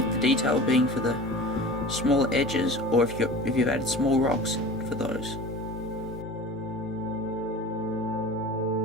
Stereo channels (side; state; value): both; normal; correlation 0.37